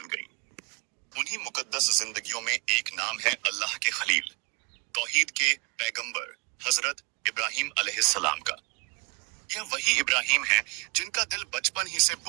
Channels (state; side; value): quieter; left; 29.5 dB